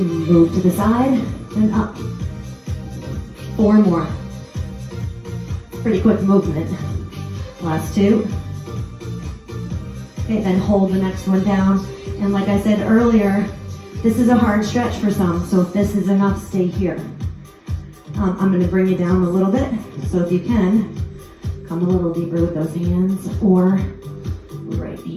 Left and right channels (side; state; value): both; identical; correlation 1.00